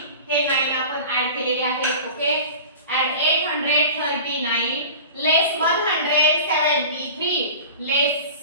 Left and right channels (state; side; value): inverted; both; correlation -0.37